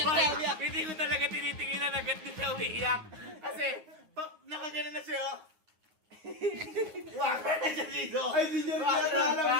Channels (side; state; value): left; late; 9.6 ms